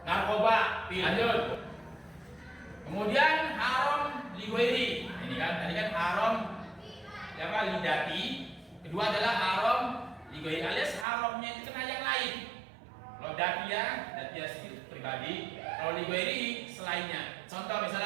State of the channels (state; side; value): drops out; left; at 11.1 s